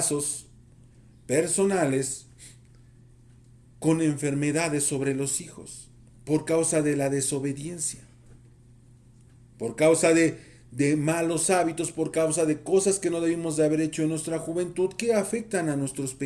personales con enfermedades sobre los hijos por causa de la desobediencia, por causa de malos hábitos, por causa de cosas que no debimos de haber hecho en nuestra juventud que afectan a nuestros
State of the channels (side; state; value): both; identical; correlation 1.00